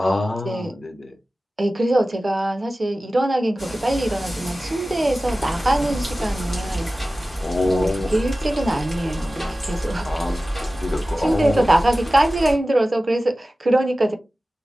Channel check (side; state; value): both; normal; correlation 0.96